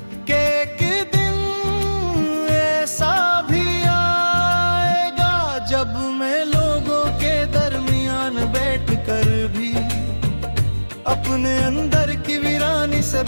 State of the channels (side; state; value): both; inverted; correlation -1.00